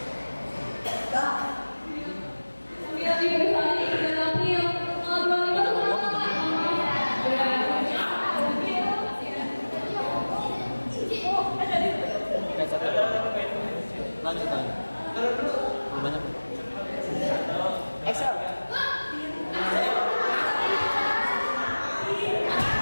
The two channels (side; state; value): both; inverted; correlation -1.00